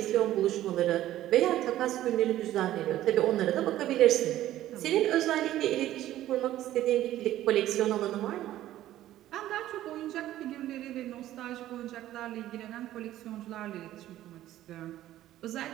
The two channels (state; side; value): quieter; left; 13.7 dB